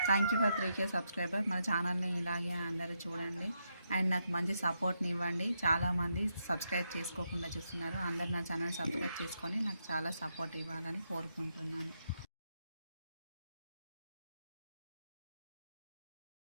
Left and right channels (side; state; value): both; inverted; correlation -0.81